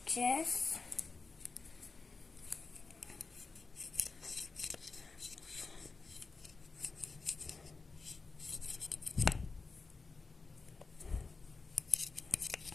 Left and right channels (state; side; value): quieter; right; 4.2 dB